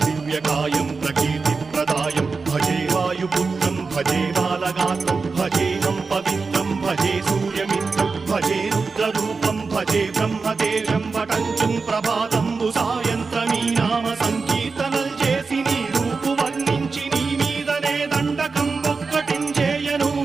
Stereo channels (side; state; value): left; quieter; 4.5 dB